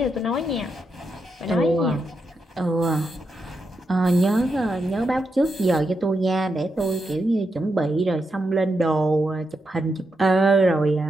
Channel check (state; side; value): normal; both; correlation 0.84